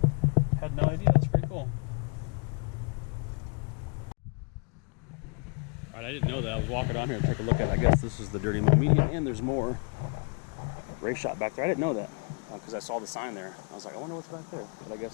Had no idea, that's pretty cool. Alright, I didn't know that. I was walking on here to take a look at it. I guess this is the Dirty Mo Media, and there's more race shop back there. I didn't know that because I saw the sign there. I was like, I wonder what's back there. But I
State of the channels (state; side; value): quieter; right; 36.3 dB